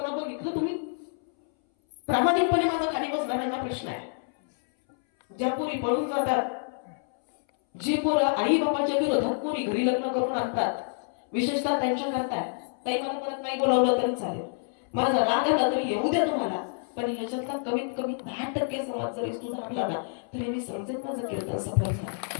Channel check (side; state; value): right; silent; 59 dB below the other